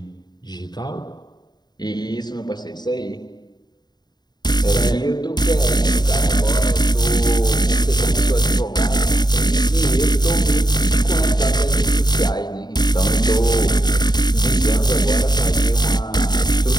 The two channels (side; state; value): right; late; 0.20 ms